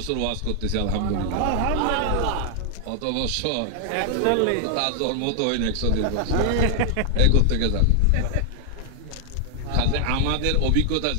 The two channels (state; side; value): different; both; correlation 0.00